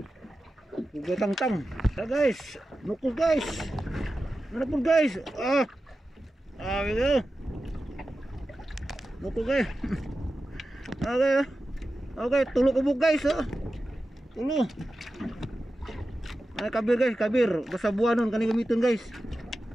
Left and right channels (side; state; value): both; normal; correlation 0.93